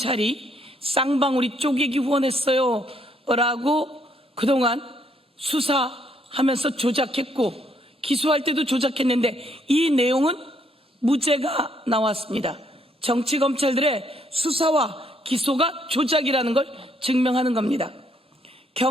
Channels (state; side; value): normal; both; correlation 0.70